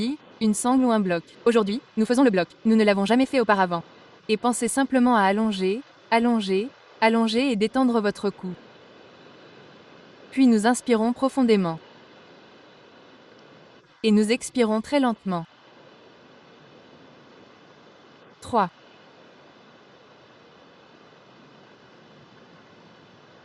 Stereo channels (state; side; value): identical; both; correlation 1.00